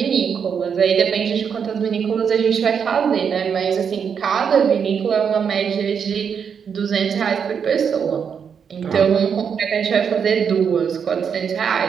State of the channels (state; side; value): quieter; left; 7.0 dB